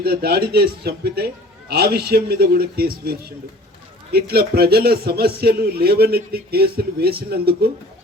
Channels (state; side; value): normal; both; correlation 0.47